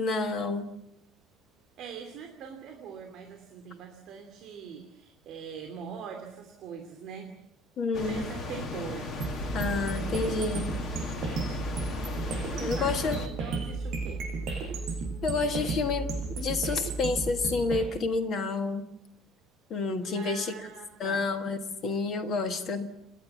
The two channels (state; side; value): normal; both; correlation 0.53